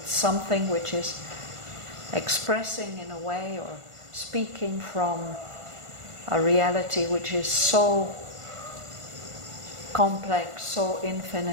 something which is expressing in a way or speaking from a reality which is so complex, so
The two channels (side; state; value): left; late; 1.5 ms